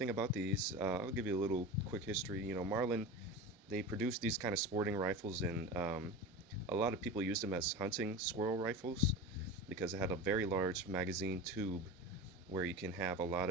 about these, I'll give you a little quick history. Marlin, they produced these kind of sporting rifles, and a lot of people used them as hunting squirrel rifles because it had a very large magazine tube where you can have a lot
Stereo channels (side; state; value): both; normal; correlation 0.29